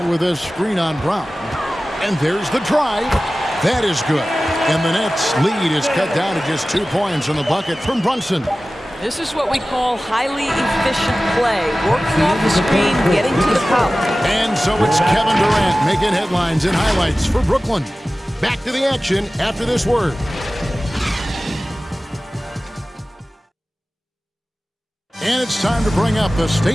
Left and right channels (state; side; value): normal; both; correlation 0.96